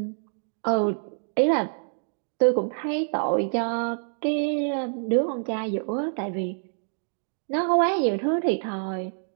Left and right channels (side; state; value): left; silent; digital silence